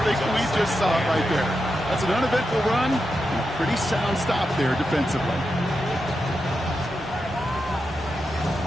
think we just saw it right there. That's an uneventful run and a pretty sound stop there defensively.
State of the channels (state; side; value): normal; both; correlation 0.88